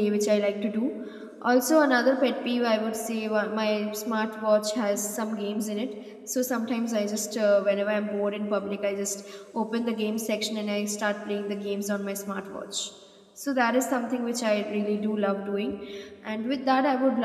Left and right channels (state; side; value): identical; both; correlation 1.00